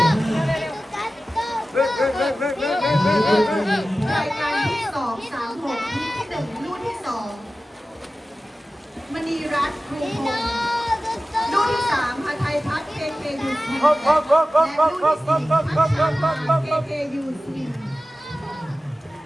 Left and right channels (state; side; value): normal; both; correlation 0.95